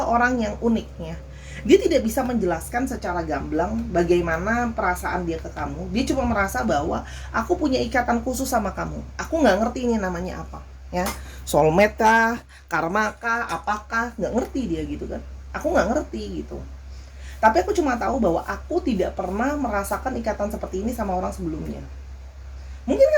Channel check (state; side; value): identical; both; correlation 1.00